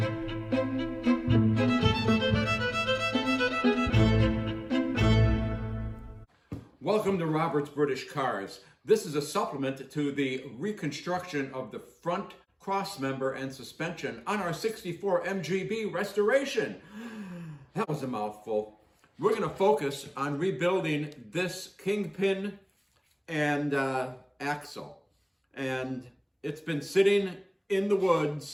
Welcome to Robert's British Cars. This is a supplement to the reconstruction of the front crossmember and suspension on our 64 MGB restoration. That was a mouthful. We're going to focus on rebuilding this Kingpin and Axel. And it's been sitting in the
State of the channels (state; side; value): identical; both; correlation 1.00